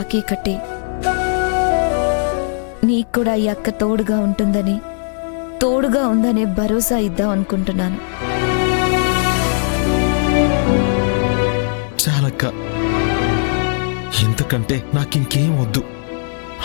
కట్టి నీకు కూడా ఈ అక్క తోడుగా ఉంటుందని, తోడుగా ఉందనే భరోసా ఇద్దాం అనుకుంటున్నాను. చాలక్క, ఎందుకంటే నాకింకేం వద్దు.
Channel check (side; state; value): right; silent; 68 dB below the other